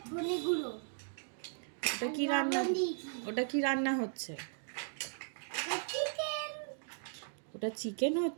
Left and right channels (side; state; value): left; silent; digital silence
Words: ধনে গুঁড়ো। ওটা কি রান্না? ওটা কি রান্না হচ্ছে? চিকেন। ওটা চিকেন